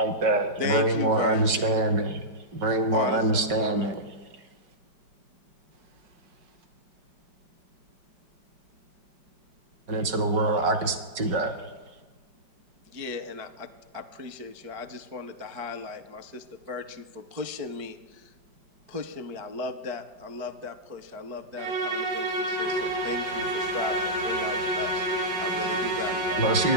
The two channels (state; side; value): late; left; 5.3 ms